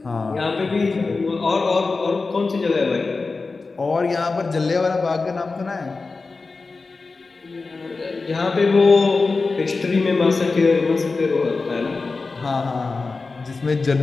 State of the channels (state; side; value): quieter; right; 4.0 dB